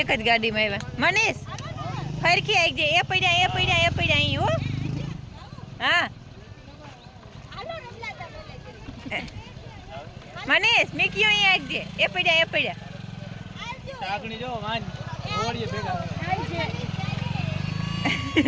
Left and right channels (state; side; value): identical; both; correlation 1.00